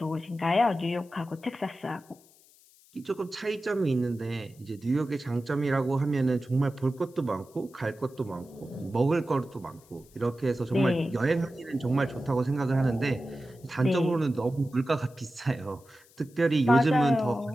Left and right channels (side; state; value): left; noise; hiss, 28 dB below the sound